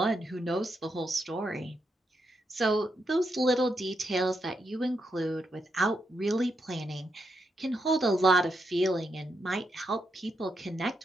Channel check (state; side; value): normal; both; correlation 0.82